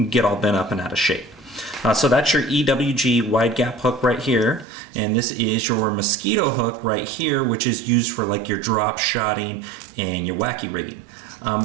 get all bent up and out of shape. So that's your EWG wide gap hook right here, and this is your mosquito hook right here, which is used for like your drop shotting and your wacky rigging.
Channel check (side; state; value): left; drops out; at 4.7 s